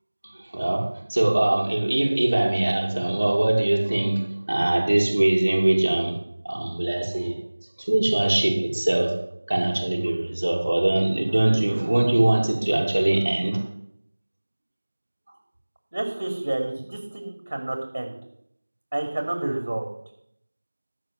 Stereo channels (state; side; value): inverted; both; correlation -1.00